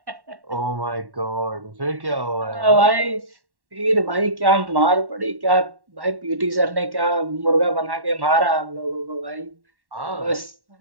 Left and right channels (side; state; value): left; late; 1.1 ms